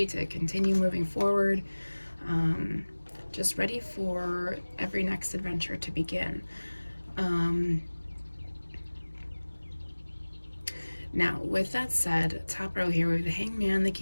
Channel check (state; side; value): inverted; both; correlation -1.00